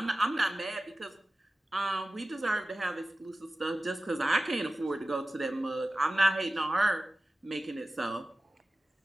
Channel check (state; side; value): normal; both; correlation 0.95